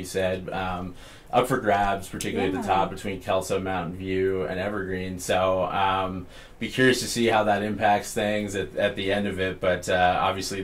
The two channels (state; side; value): identical; both; correlation 1.00